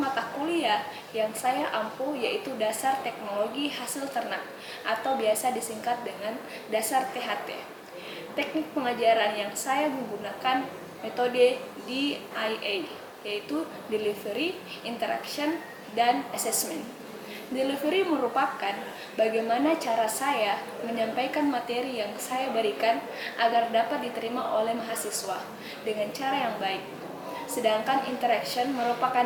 kuliah yang saya ampu yaitu dasar teknologi hasil ternak atau biasa disingkat dengan dasar THT. Teknik pengajaran yang saya menggunakan metode DIA, yaitu Delivery, Interaction, dan Assessment. Delivery merupakan bagaimana cara saya menyampaikan materi yang saya berikan agar dapat diterima oleh mahasiswa dengan cara yang baik. Sedangkan interaction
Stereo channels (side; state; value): both; identical; correlation 1.00